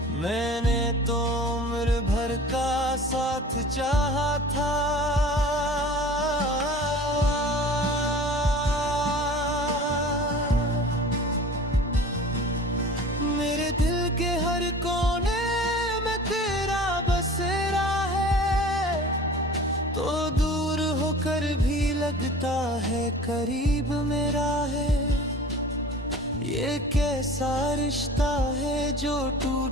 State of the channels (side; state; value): both; normal; correlation 0.41